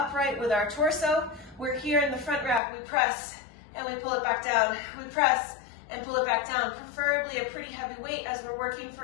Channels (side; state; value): right; drops out; at 2.6 s